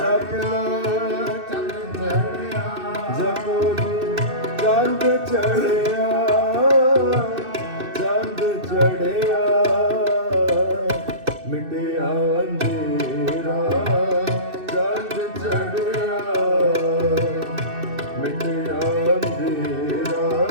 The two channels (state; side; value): late; left; 2.6 ms